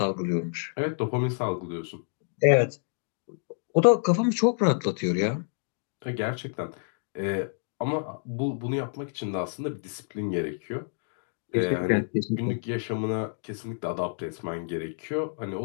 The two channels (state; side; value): silent; right; digital silence